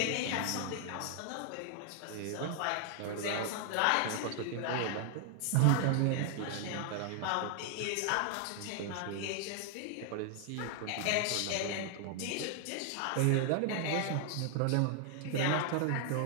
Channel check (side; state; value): both; different; correlation 0.00